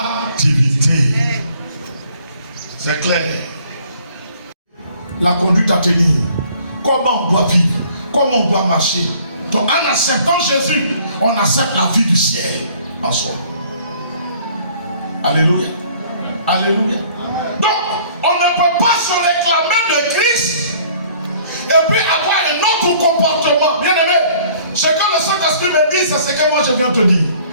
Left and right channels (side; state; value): both; inverted; correlation -0.56